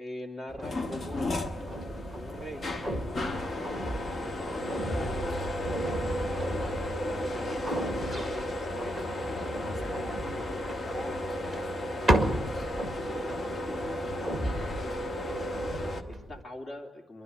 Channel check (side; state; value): both; normal; correlation 0.80